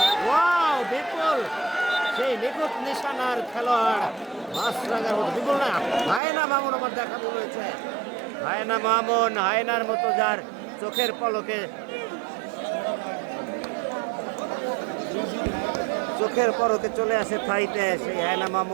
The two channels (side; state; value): left; drops out; at 6.2 s